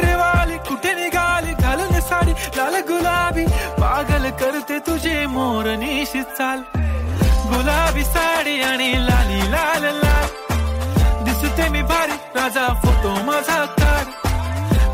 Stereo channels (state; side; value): identical; both; correlation 1.00